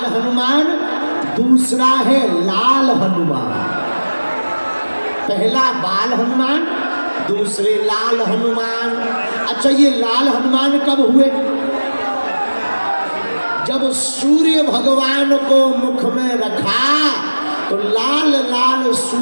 हनुमान, दूसरा है लाल हनुमान। पहला बाल हनुमान, दूसरे लाल हनुमान। अच्छा, ये लाल हनुमान कब हुए? जब सूर्य भगवान को मुख में रखा तो लाल लाल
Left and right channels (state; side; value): inverted; both; correlation -1.00